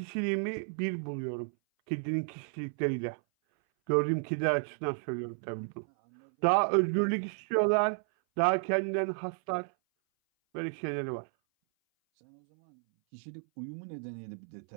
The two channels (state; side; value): silent; left; 56 dB below the other